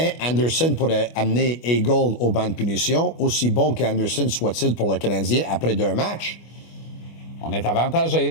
Anderson pourrait amener Hagel au banc de punition, aussi bon qu'Anderson soit-il pour le Canadien après 2 matchs, on est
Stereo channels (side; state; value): right; late; 25 ms